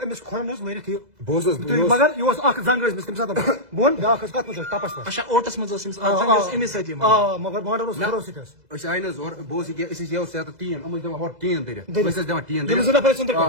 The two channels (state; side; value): late; left; 2.0 ms